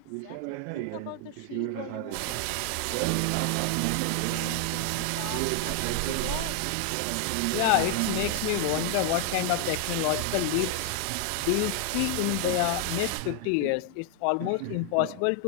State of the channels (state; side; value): different; both; correlation 0.00